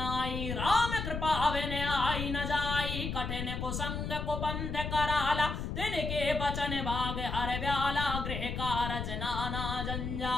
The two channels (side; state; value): left; noise; rumble, 4 dB below the sound